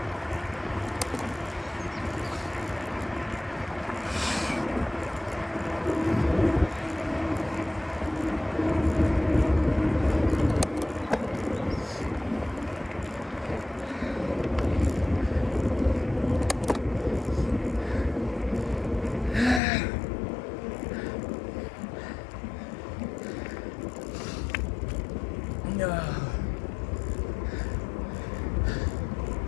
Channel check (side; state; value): right; drops out; at 19.6 s